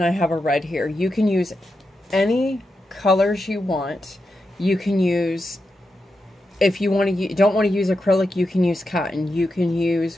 I have a red here. You can use any colors you want. You can use, if you want to, don't want to use acrylic, you can use cotton. You can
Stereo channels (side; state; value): both; normal; correlation 0.87